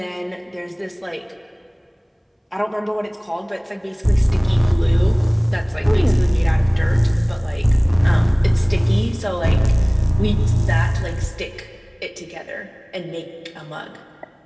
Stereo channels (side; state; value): both; identical; correlation 1.00